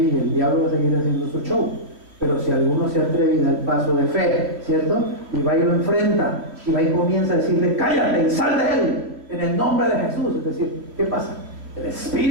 y el diablo va a seguir haciendo su show. Pero si alguno se atreve y da el paso de fe, ¿cierto?, y va y lo enfrenta, y va y comienza a decirle, cállate y sal de él, en el nombre de Jesús. Es decir, ¿qué pasa? El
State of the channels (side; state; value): left; late; 3.0 ms